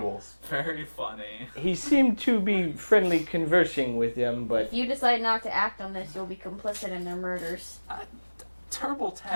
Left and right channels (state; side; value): inverted; both; correlation -1.00